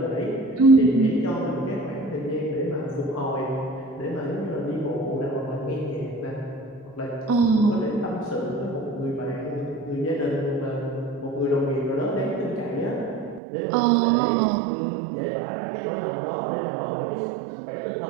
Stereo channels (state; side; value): drops out; left; at 13.4 s